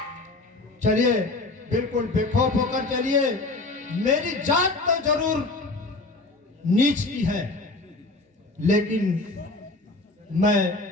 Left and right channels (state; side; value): quieter; right; 3.0 dB